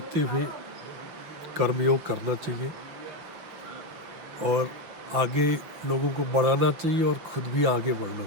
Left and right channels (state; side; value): late; left; 6.0 ms